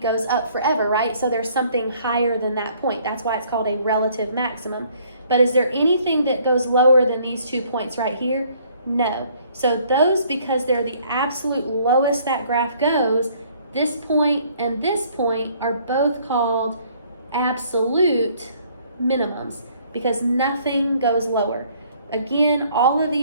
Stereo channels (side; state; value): both; inverted; correlation -0.61